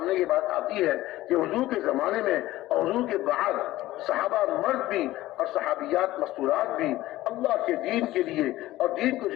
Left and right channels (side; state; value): right; quieter; 16.3 dB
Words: یہ بات آتی ہے کہ حضور کے زمانے میں اور حضور کے بعد صحابہ مرد بھی اور صحابیات مستورات بھی اللہ کے دین کے لیے اور دین کو